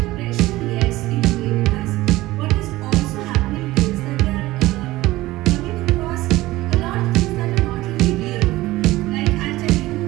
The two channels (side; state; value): left; quieter; 18.0 dB